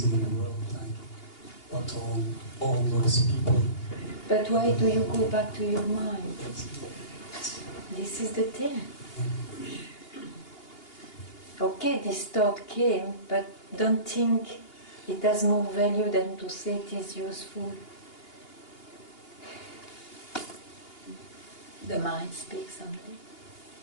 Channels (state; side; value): late; right; 2.8 ms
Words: in the world, like what all those people. But why do you go back to your mind? This is the thing. Okay, this thought came, but don't think it has more value than to say it is useful. The mind speaks only.